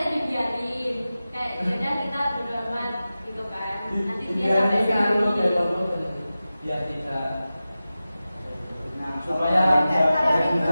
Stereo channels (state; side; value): inverted; both; correlation -0.95